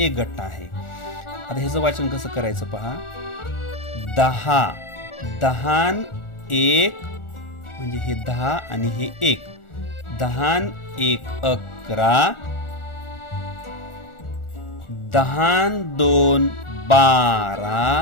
गट्टा आहे. आता ह्याचं वाचन कसं करायचं पहा. 10 10 1 म्हणजे हे 10 आणि हे 1. 10 1 11, 10 2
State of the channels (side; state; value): right; late; 1.4 ms